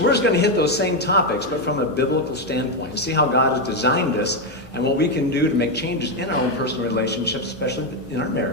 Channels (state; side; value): normal; both; correlation 0.05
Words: we're just going to hit those same topics, but from a biblical standpoint, and see how God has designed us and what we can do to make changes in our own personal relationships, especially in our